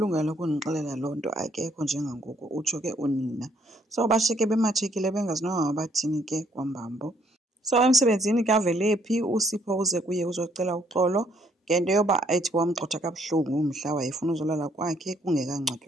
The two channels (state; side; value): normal; both; correlation 0.67